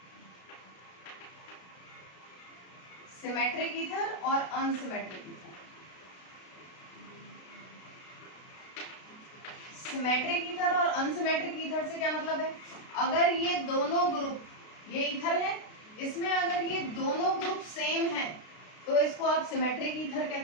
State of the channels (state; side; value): late; right; 33 ms